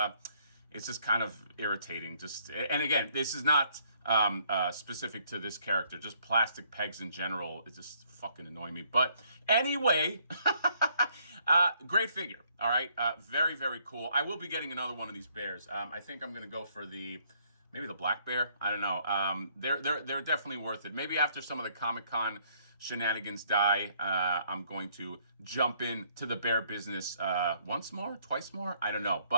kind of irritating. And again, this is not specific to this character. Just plastic pegs in general, it just fucking annoy me. But anyway, great figure. All right, very, very cool. I will be getting another one of these bears. I think I'm gonna go for maybe the black bear. I don't know. They're definitely worth it. Maybe after some of the Comic-Con shenanigans die, I'm going to jump into the bear business once more, twice more. I don't know,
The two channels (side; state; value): both; inverted; correlation -0.67